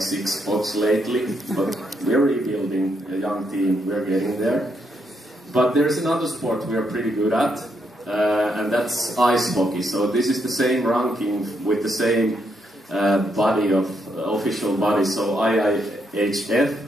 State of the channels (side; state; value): both; normal; correlation 0.78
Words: 6 spots lately. But we're rebuilding a young team. We're getting there. But there's another sport we are pretty good at. And that's ice hockey. So this is the same ranking with the same body of official body. So IIHF.